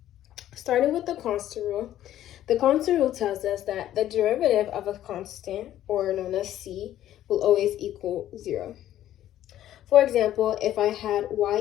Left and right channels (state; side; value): quieter; right; 12.5 dB